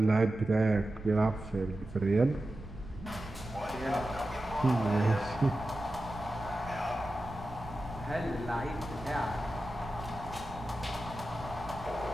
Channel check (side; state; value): right; noise; rumble, 14 dB below the sound